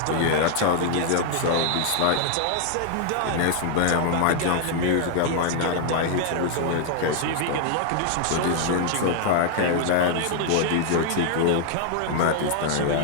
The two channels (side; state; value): both; different; correlation 0.00